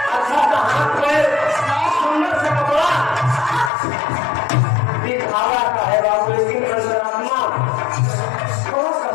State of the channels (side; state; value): right; drops out; at 3.7 s